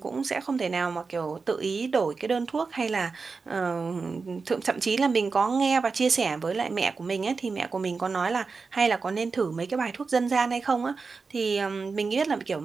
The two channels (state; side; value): quieter; left; 4.6 dB